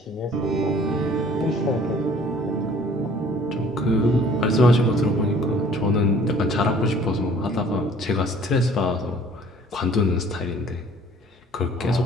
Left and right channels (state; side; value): normal; both; correlation 0.54